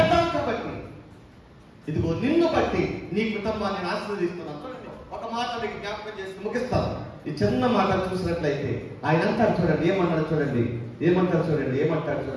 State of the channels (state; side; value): identical; both; correlation 1.00